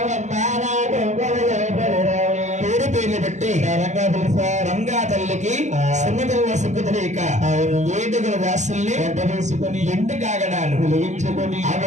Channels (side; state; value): left; late; 0.34 ms